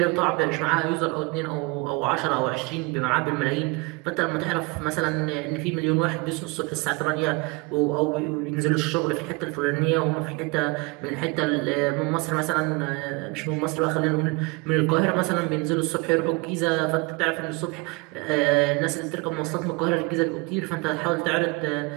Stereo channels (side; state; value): left; quieter; 27.4 dB